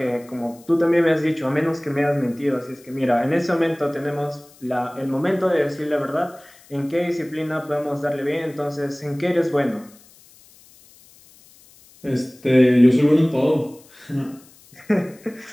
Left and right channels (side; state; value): left; noise; hiss, 26 dB below the sound